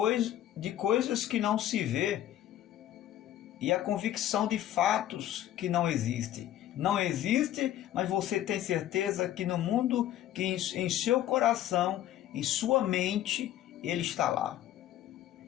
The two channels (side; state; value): right; quieter; 12.4 dB